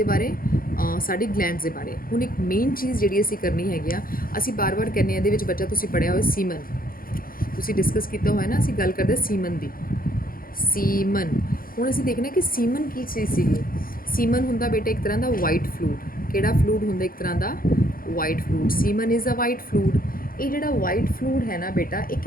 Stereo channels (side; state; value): right; late; 0.42 ms